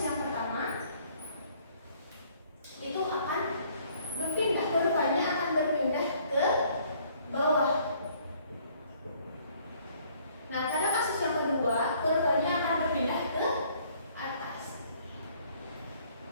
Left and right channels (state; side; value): inverted; both; correlation -0.61